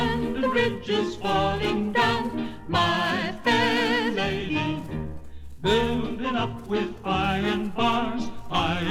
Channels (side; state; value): both; identical; correlation 1.00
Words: Bridge is falling down, my fair lady. Building up with iron bars,